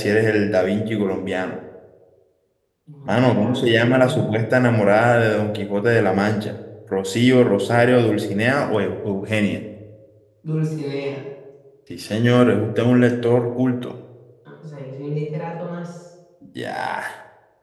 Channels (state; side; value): identical; both; correlation 1.00